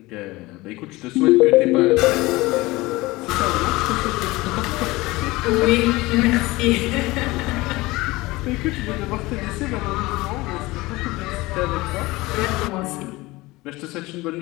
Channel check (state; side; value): quieter; right; 20.7 dB